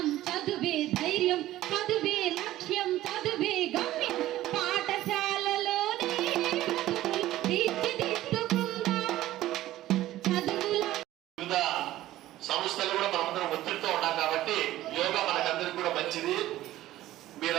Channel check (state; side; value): quieter; left; 14.9 dB